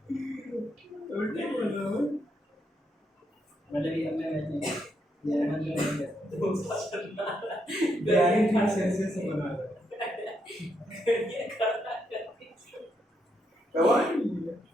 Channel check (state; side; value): normal; both; correlation 0.78